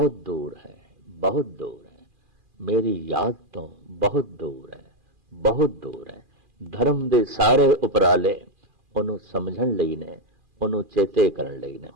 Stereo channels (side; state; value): left; late; 2.4 ms